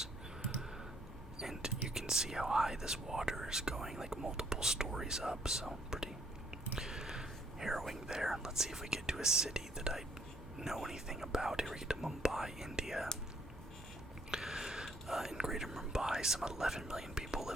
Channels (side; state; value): both; normal; correlation 0.67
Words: And you can see how high this water is going, like multiple stories up. So pretty harrowing there. Let's see if we get to a city that I know anything about. Here we get to Mumbai, India. In Greater Mumbai, some 11 million people